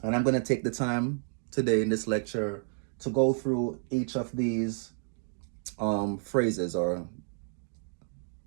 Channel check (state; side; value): silent; left; digital silence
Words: And I'm going to take the time today in this lecture to go through each of these phrases. Or